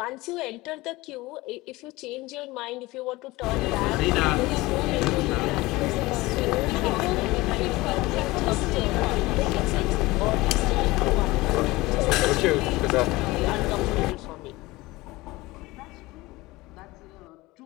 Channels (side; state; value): right; quieter; 20.5 dB